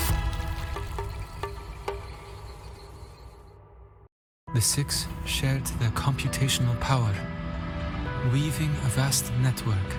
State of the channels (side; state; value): both; identical; correlation 1.00